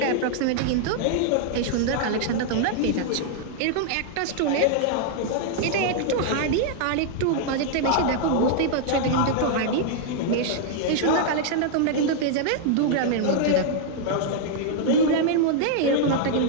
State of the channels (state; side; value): different; both; correlation -0.01